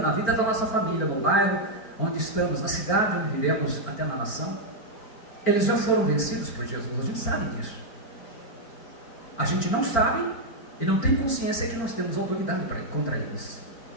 vida da nossa família, no bairro onde estamos, na cidade onde vivemos, até na nação. Eles já foram vencidos por Jesus, a gente sabe disso. A gente não sabe e não tem consciência que nós temos autoridade contra eles,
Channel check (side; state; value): right; late; 4.4 ms